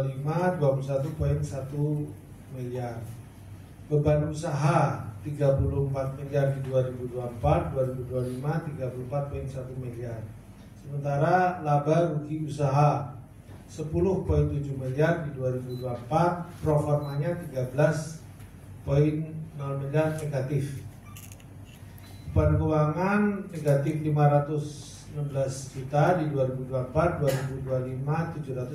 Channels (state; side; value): identical; both; correlation 1.00